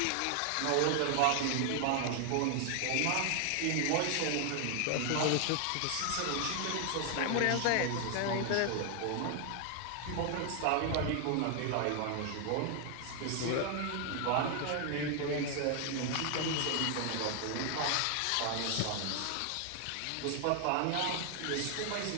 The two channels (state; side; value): different; both; correlation 0.00